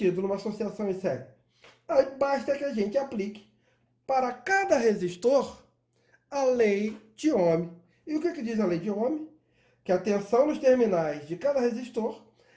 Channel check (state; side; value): identical; both; correlation 1.00